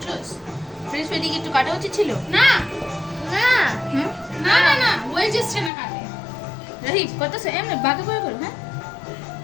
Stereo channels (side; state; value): right; drops out; at 5.7 s